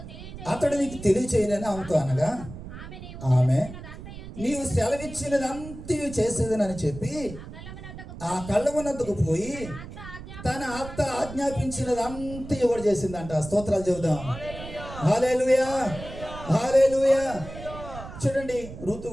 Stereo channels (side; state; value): right; noise; rumble, 12 dB below the sound